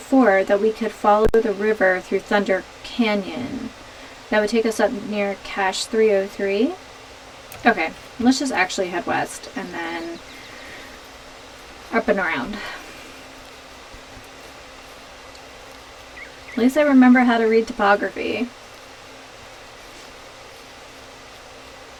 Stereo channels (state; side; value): identical; both; correlation 1.00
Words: that we could follow the river through Thunder Canyon. That would take us up near Cache 303. Okay, let's just actually head west and then up and around. At least I remember how to read topography.